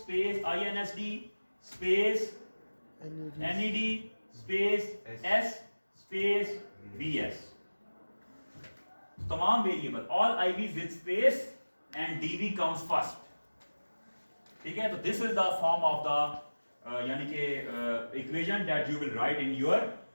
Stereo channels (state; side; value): inverted; both; correlation -1.00